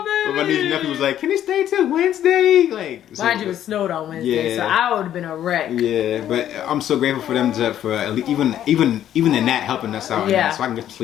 baby. But my niece and nephew was like, can he stay till Wednesday? Like, mind you, it snowed on Wednesday, yeah. so I would have been a wreck. Yeah, but I'm so grateful for them for even in that helping us out. Yeah. So I can get to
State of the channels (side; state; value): right; quieter; 11.1 dB